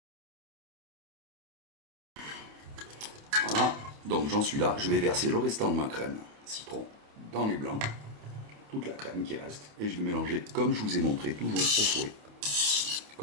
Voilà, donc j'en suis là, je vais verser le restant de ma crème citron dans les blancs, toute la crème qui reste, et je vais mélanger comme je vous ai montré, toujours au fouet.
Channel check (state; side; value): late; left; 28 ms